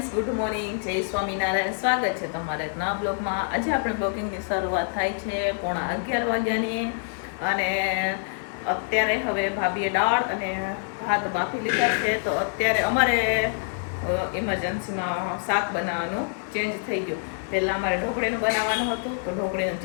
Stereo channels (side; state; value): right; silent; 61 dB below the other